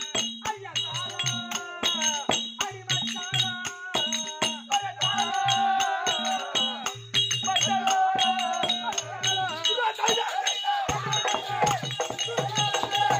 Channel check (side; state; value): both; identical; correlation 1.00